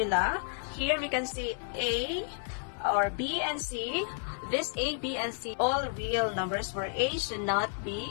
here we can see a or b and c. This a, b, and c, all real numbers where a should not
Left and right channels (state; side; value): silent; right; 57 dB below the other